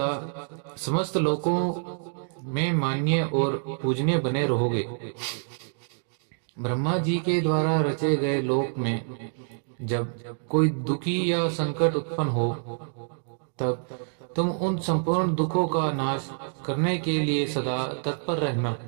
समस्त लोकों में मान्य और पूजनीय बने रहोगे। ब्रह्मा जी के द्वारा रचे गए लोक में जब कोई दुखी या संकट उत्पन्न हो, तब तुम उन संपूर्ण दुखों का नाश करने के लिए सदा तत्पर रहना।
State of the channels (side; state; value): left; silent; digital silence